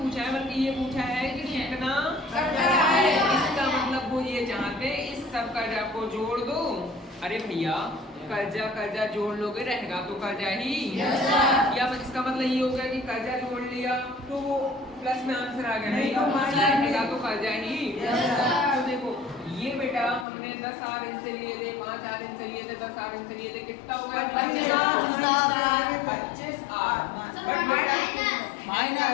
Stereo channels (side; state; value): right; drops out; at 20.2 s